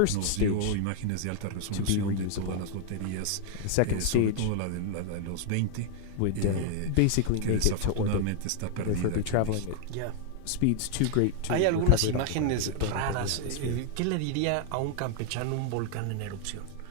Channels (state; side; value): different; both; correlation -0.01